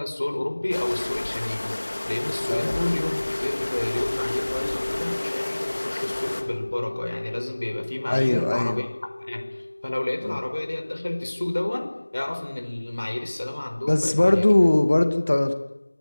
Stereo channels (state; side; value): inverted; both; correlation -1.00